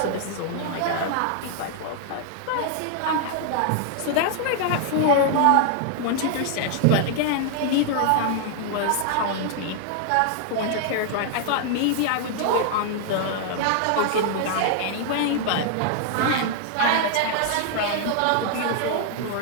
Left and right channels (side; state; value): both; different; correlation 0.00